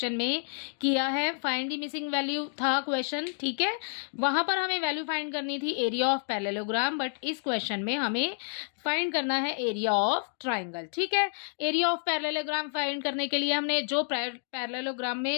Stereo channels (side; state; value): right; silent; digital silence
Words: में किया है, फाइंड द मिसिंग वैल्यू था क्वेश्चन, ठीक है। वहां पर हमें वैल्यू फाइंड करनी थी एरिया ऑफ पैरेललोग्राम, बट इस क्वेश्चन में हमें फाइंड करना है एरिया ऑफ ट्राइंगल, ठीक है। एरिया ऑफ पैरेललोग्राम फाइंड करने के लिए हमने जो पैरेललोग्राम